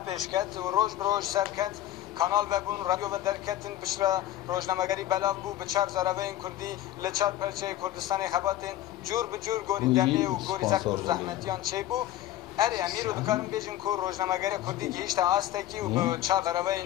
پیش کرد و روز بروز سر کرد کانال و بون رادیو و درکتن بشرا روزنامه‌گری بلاغ بو به چهار زاروین کردی لچار پرچه کردستان خباتین جور به جور گوری دمی و گوری زخم و زحمتیان چه بو اری امیر و دکارم بیجن که روزنامه‌گری کردی که هیچ آستکی و به چهار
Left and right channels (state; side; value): quieter; right; 13.4 dB